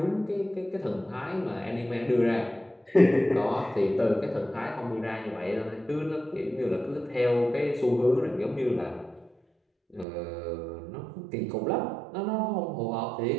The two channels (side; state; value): left; drops out; at 10.1 s